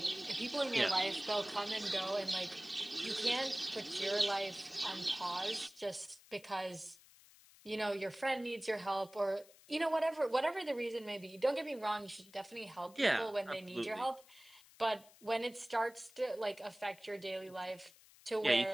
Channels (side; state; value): left; noise; hiss, 24 dB below the sound